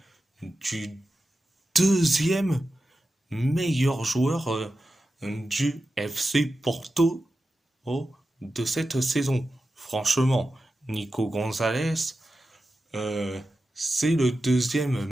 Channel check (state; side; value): normal; both; correlation 0.92